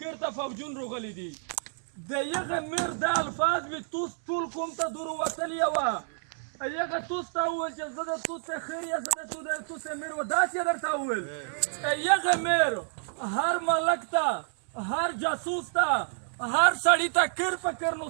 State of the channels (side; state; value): left; silent; digital silence